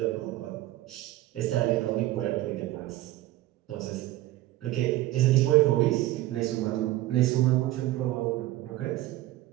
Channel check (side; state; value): left; quieter; 16.1 dB